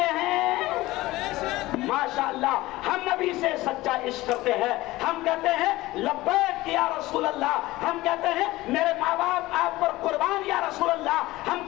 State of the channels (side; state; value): right; quieter; 18.4 dB